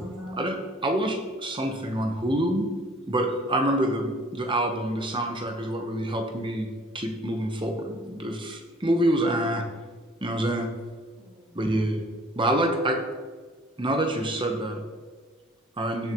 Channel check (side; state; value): both; normal; correlation 0.54